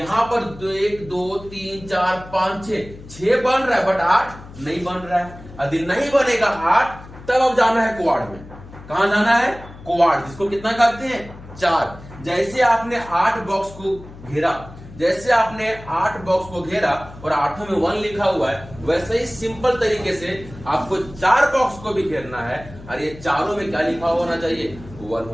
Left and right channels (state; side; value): noise; left; hum, 17 dB below the sound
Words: पर 1 2 3 4 5 6 बन रहा है, बट 8 नहीं बन रहा है। यदि नहीं बनेगा 8, तब अब जाना है क्वाड में। कहां जाना है? क्वाड, जिसको कितना कहते हैं? 4। जैसे आपने 8 बॉक्स को घेरा, जैसे आपने 8 बॉक्स को घेरा और 8 में 1 लिखा हुआ है, वैसे ही सिंपल तरीके से आपको 4 बॉक्स को भी घेरना है और ये चारों में क्या लिखा होना चाहिए, 1